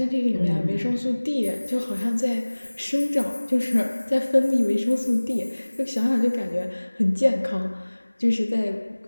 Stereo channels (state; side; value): inverted; both; correlation -1.00